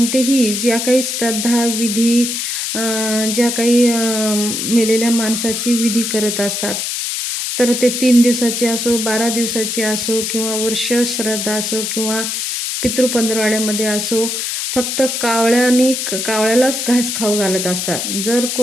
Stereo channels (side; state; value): left; noise; hiss, 2 dB below the sound